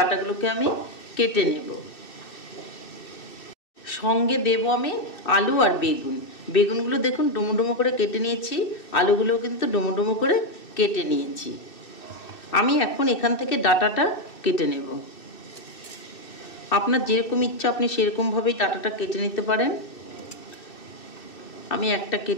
আমি কেটে নেব। সঙ্গে দেব আমি আলু আর বেগুন। বেগুনগুলো দেখুন ডুমো ডুমো করে কেটে নিয়েছি, আলুগুলোও কিন্তু ডুমো ডুমো করে কেটে নিয়েছি। আমি এখন এখান থেকে ডাঁটাটা কেটে নেব। আপনার যেরকম ইচ্ছা আপনি সেরকমভাবেই ডাঁটাটা কেটে নিতে পারেন। আমি একটা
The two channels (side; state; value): right; late; 2.6 ms